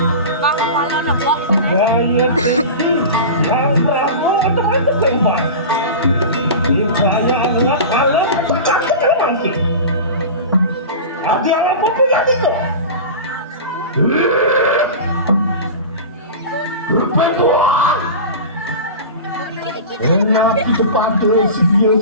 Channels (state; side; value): inverted; both; correlation -0.30